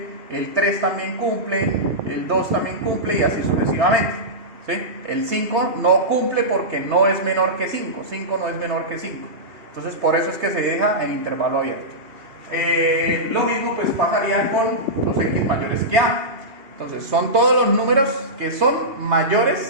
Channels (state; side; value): late; left; 2.8 ms